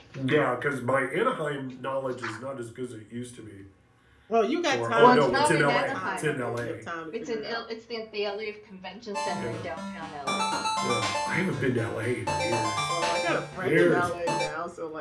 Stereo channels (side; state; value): both; identical; correlation 1.00